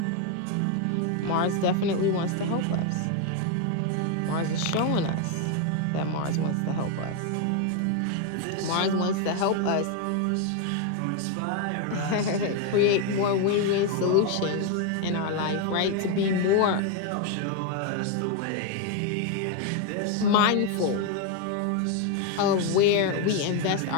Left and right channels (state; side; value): different; both; correlation 0.01